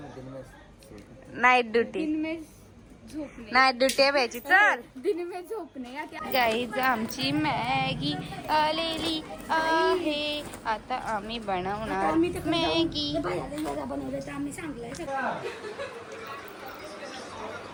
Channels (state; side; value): identical; both; correlation 1.00